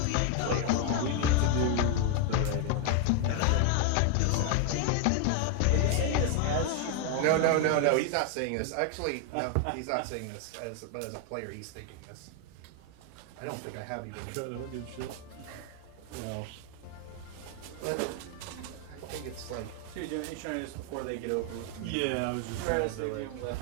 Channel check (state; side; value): different; both; correlation 0.00